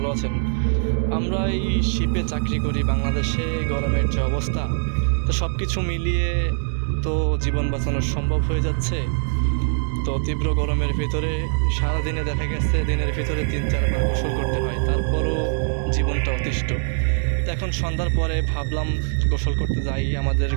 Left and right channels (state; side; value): silent; left; digital silence